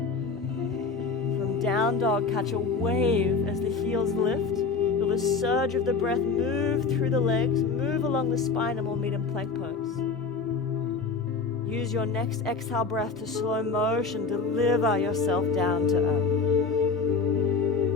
From down dog, catch a wave as the heels lift. Feel the surge of the breath move through the legs, move along the spine, and we'll meet in plank pose. Use your next exhale breath to slow motion, deliver yourself down to earth.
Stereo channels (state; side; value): quieter; right; 4.6 dB